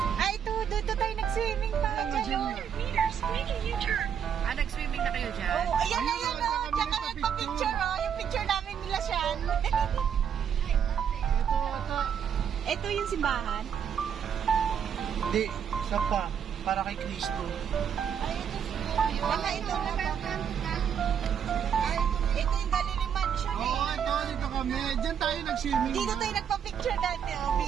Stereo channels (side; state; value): left; quieter; 8.1 dB